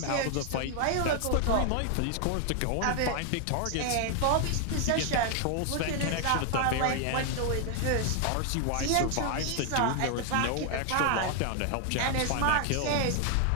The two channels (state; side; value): different; both; correlation 0.00